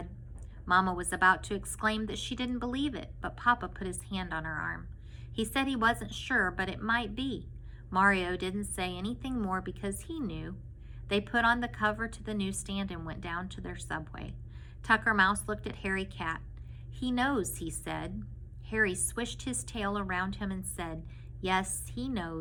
Mama was about to exclaim that she didn't believe it, but Papa put his hand on her arm. He said he wasn't sure, but it might be. Mario didn't say anything more because he knew. They put on the cover to the newsstand and went down to their subway. Tucker Mouse looked at Harry Cat. "He knows," he said. Harry swished his tail around him and said, "Yes, he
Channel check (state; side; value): identical; both; correlation 1.00